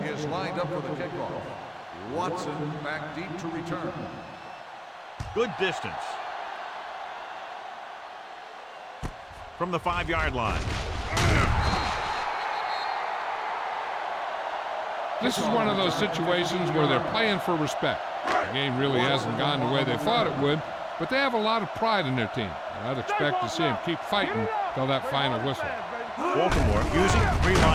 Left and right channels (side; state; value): both; identical; correlation 1.00